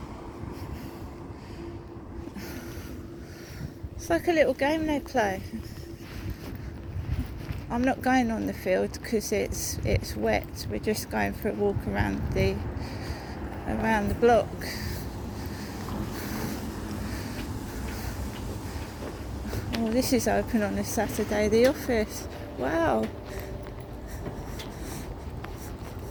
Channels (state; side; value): identical; both; correlation 1.00